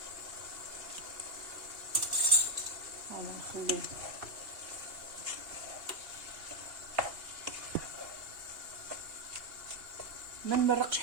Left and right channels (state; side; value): late; left; 2.8 ms